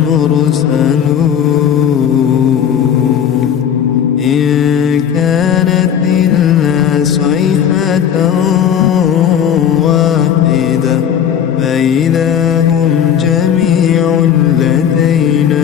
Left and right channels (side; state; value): right; quieter; 8.7 dB